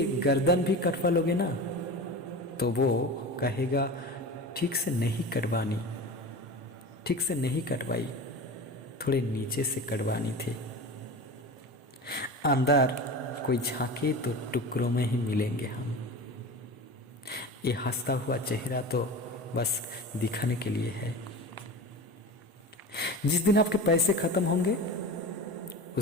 गर्दन भी कटवा लोगे ना, तो वो कहेगा ठीक से नहीं कटवानी, ठीक से नहीं कटवाई, थोड़े नीचे से कटवानी थी। अंदर कोई झांके तो टुकड़ों में ही मिलेंगे हम। ये हंसता हुआ चेहरा तो बस दिखाने के लिए है। जिस दिन आपके पैसे खत्म होंगे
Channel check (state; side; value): normal; both; correlation 0.31